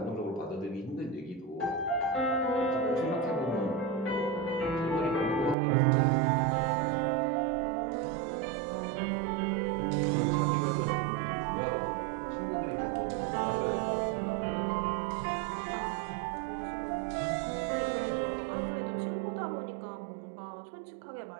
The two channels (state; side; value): drops out; left; at 5.6 s